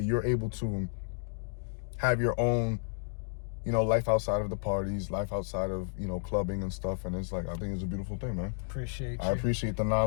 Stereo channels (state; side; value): silent; right; digital silence